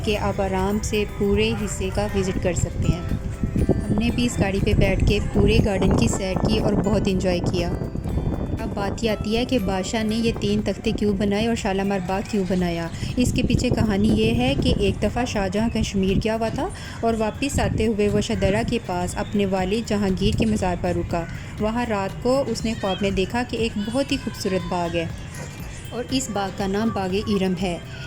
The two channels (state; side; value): identical; both; correlation 1.00